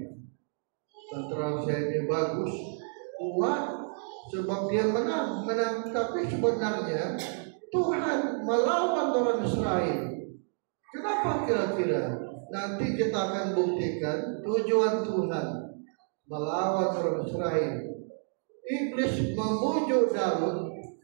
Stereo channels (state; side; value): silent; left; 58 dB below the other